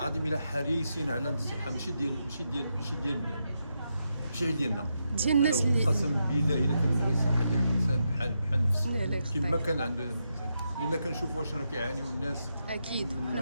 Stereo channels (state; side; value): inverted; both; correlation -0.84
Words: الا حريصين على الصحه، ماشي ديالنا ديال الناس اللي قسم بالله الا كنبغي الصحه ديال الانسان بحال نفسي كما كيف كان عند الانسان، لان كنشوفوا واش راه كيعانيو الناس. اكيد